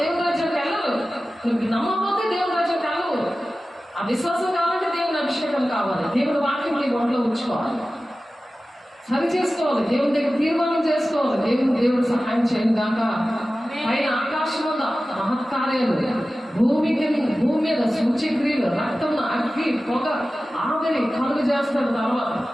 రాజ్యానికి వెళ్ళరు. నువ్వు నమ్మకపోతే దేవుని రాజ్యానికి వెళ్ళవు. ఆ విశ్వాసం కావాలంటే దేవుని అభిషేకం కావాలి. దేవుని వాక్యం నీ ఒంట్లో ఉంచుకోవాలి, సరి చేసుకోవాలి, దేవుని దగ్గర తీర్మానం చేసుకోవాలి. దేవుడు సహాయం చేయను గాక. పైన ఆకాశం వల్ల మహత్కార్యాలు, భూమి మీద సూచ్యక్రియలు, రక్తం, అగ్గి, పొగ, ఆవిరి కలుగు చేస్తారు. తర్వాత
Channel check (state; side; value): normal; both; correlation 0.95